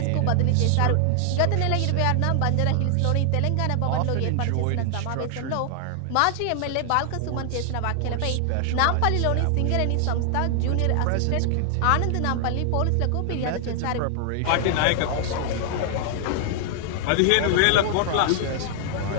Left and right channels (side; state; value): both; different; correlation 0.00